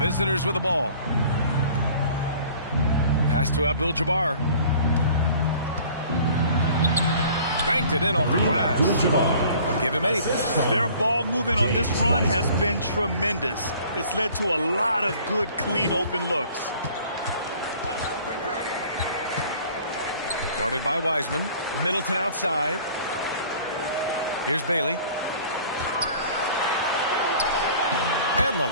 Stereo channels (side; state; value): both; inverted; correlation -0.50